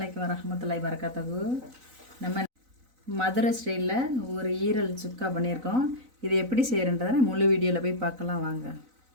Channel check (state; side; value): late; left; 4.0 ms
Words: வரஹ்மத்துல்லாஹி வரகாத்துஹு. நம்ம மதுரை ஸ்டைலில் ஒரு ஈரல் சுக்கா பண்ணியிருக்கோம். இது எப்படி செய்கிறன்றதை முழு வீடியோவில் போய் பார்க்கலாம் வாங்க.